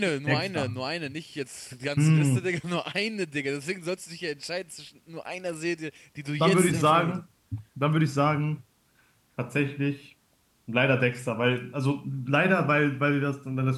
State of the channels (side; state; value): both; identical; correlation 1.00